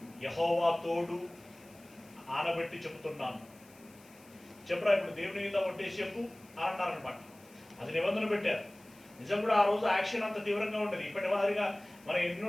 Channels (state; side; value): noise; left; hiss, 26 dB below the sound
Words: యెహోవా తోడు ఆనబెట్టి చెబుతున్నాను, చెప్పరా ఇప్పుడు దేవుని మీద ఒట్టేసి చెప్పు అన్నారనమాట. అది నిబంధన పెట్టారు. నిజం కూడా ఆ రోజు యాక్షన్ అంత తీవ్రంగా ఉంటుంది. ఇప్పటి మాదిరిగా మనం